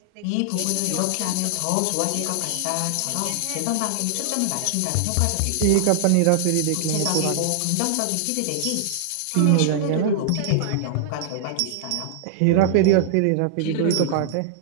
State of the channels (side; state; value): both; different; correlation -0.01